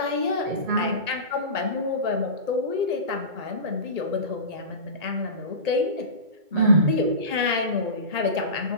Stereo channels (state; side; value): late; left; 2.2 ms